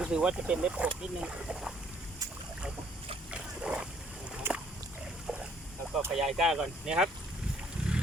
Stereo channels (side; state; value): both; normal; correlation 0.63